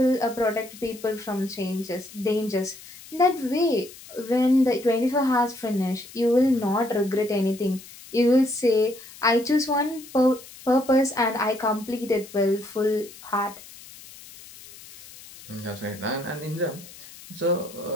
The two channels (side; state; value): left; noise; hiss, 18 dB below the sound